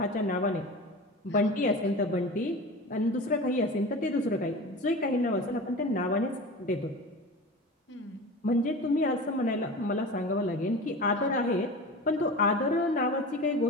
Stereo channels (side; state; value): both; normal; correlation 0.32